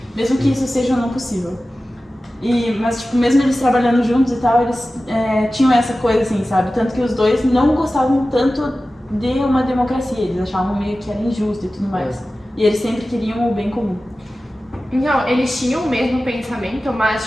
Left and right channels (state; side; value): normal; both; correlation 0.95